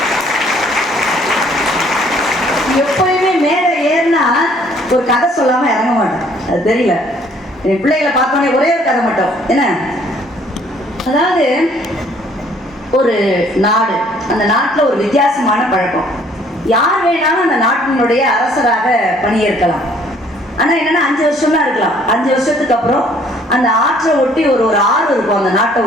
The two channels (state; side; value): normal; both; correlation 0.60